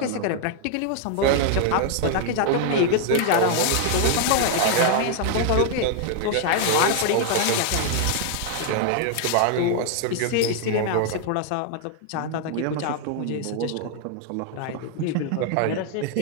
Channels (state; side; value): different; both; correlation 0.00